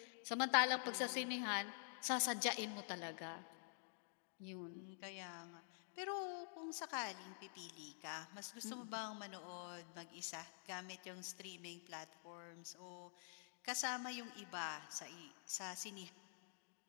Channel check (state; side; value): silent; right; digital silence